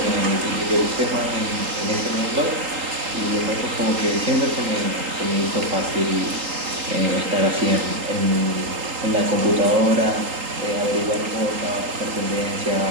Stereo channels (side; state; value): left; late; 3.8 ms